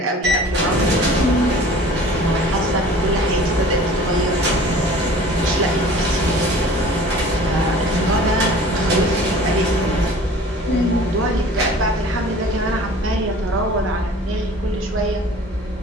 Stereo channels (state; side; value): normal; both; correlation 0.46